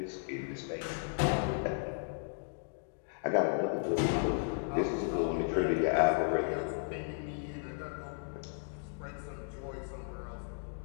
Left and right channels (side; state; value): right; silent; digital silence